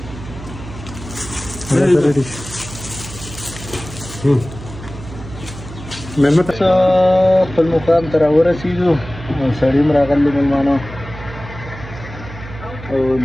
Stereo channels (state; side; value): noise; right; hum, 13 dB below the sound